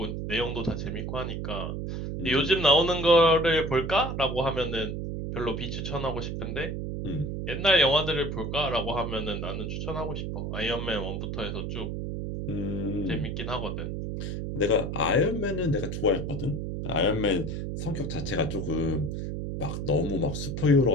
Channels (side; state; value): right; noise; hum, 4 dB below the sound